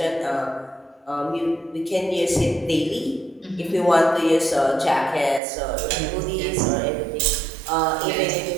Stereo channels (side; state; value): left; drops out; at 5.4 s